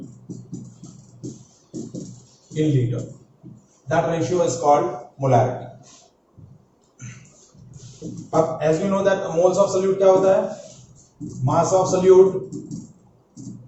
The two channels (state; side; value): identical; both; correlation 1.00